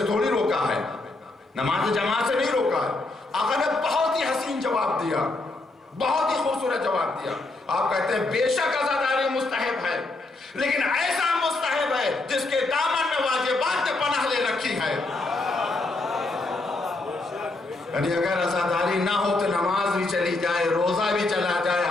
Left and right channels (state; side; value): quieter; right; 3.1 dB